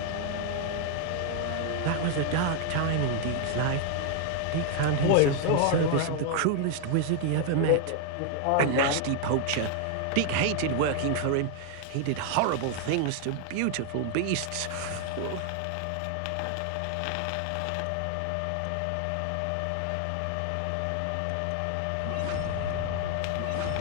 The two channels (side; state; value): both; different; correlation 0.00